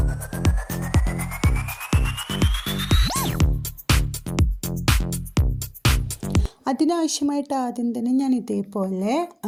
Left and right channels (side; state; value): both; identical; correlation 1.00